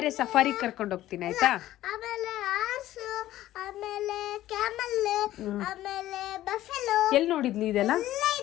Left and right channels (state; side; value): quieter; right; 14.3 dB